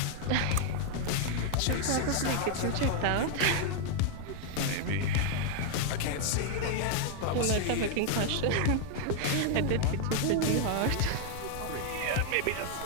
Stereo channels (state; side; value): different; both; correlation 0.00